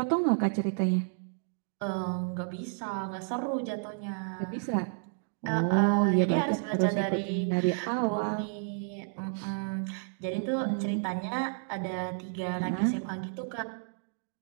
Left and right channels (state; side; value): silent; left; digital silence